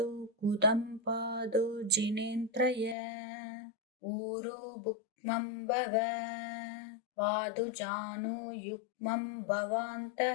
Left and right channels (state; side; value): drops out; right; at 3.0 s